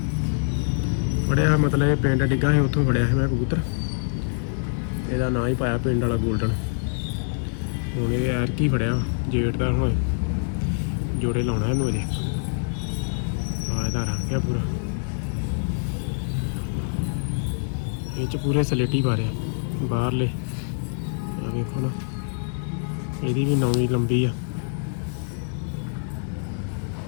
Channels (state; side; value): silent; right; 62 dB below the other